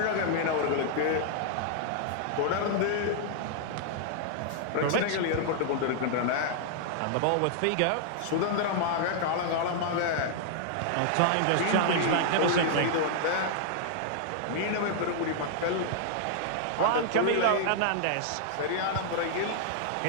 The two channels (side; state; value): both; different; correlation -0.01